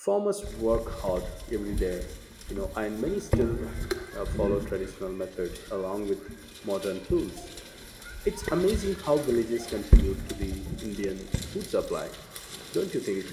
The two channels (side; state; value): both; identical; correlation 1.00